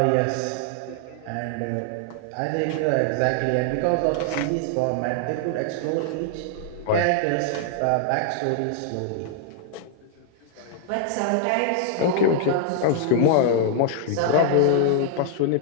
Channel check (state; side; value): different; both; correlation -0.01